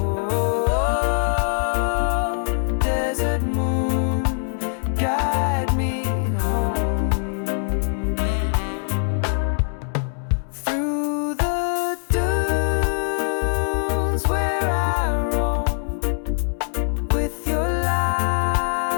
Guide me home through the dunes where I roam. With your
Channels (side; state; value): right; silent; digital silence